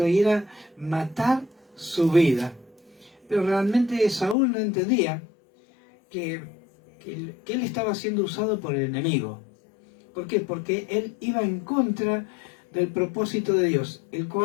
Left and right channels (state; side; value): drops out; right; at 4.4 s